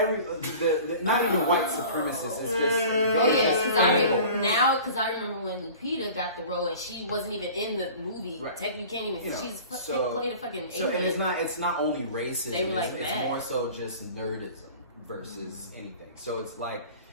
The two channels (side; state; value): both; inverted; correlation -0.42